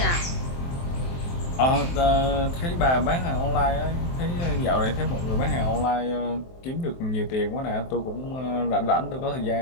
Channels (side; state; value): right; late; 23 ms